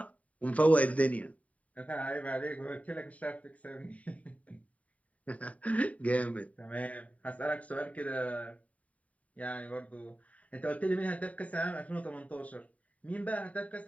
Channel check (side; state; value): right; late; 0.068 ms